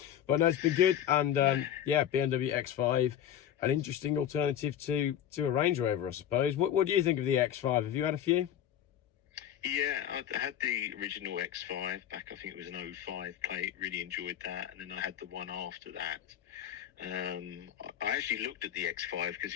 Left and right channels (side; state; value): right; quieter; 10.3 dB